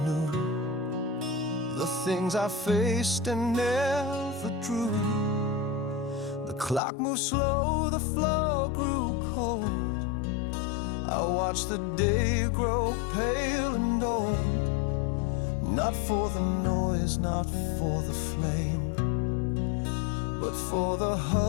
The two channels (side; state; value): right; drops out; at 6.8 s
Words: knew the things I faced and never drew. The clock moved slow, the floor grew cold. I watched the day grow pale and old. Not for the noise, not for the flame, but for the